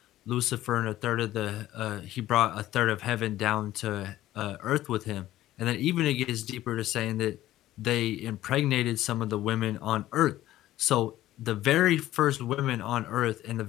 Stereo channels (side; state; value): right; quieter; 14.6 dB